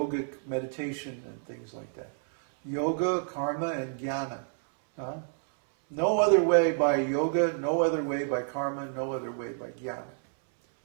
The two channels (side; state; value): left; silent; 58 dB below the other